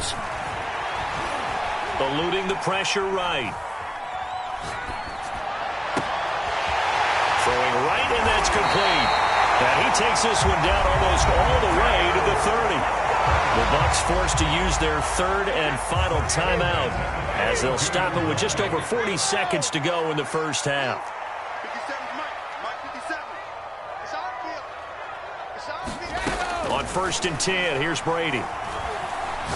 Eluding the pressure right. Throwing right, and that's complete. And he takes this one down almost all the way to the 30. The Bucs forced to use their 3rd and final timeout as they'll stop it with just over 40 seconds to go in the first half. On 1st and 10, here's Brady.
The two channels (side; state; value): both; identical; correlation 1.00